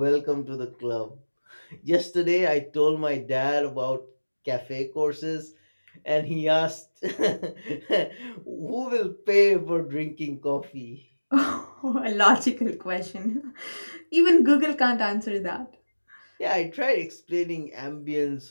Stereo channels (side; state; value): both; inverted; correlation -1.00